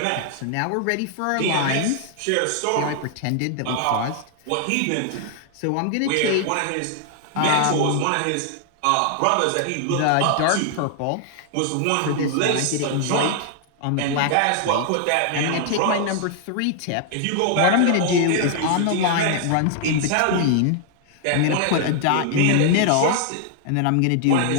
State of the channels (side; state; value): both; different; correlation 0.00